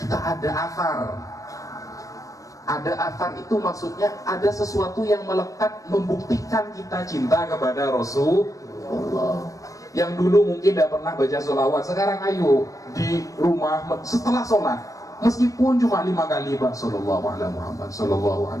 ada athar. Ada athar itu maksudnya ada sesuatu yang melekat membuktikan kita cinta kepada Rasulullah. Yang dulu mungkin tidak pernah baca sholawat, sekarang ayo di rumah setelah sholat, meskipun cuma 5 kali Pak, sallallahu ala Muhammad, sallallahu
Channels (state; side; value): late; right; 0.16 ms